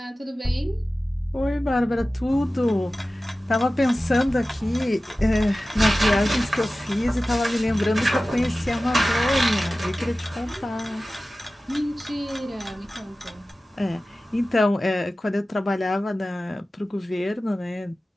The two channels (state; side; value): normal; both; correlation 0.96